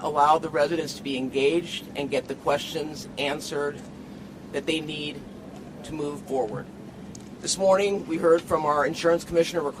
allow the residents to be engaged and get the questions answered that they need to move forward. This morning, we heard from our Insurance Commissioner,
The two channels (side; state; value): both; identical; correlation 1.00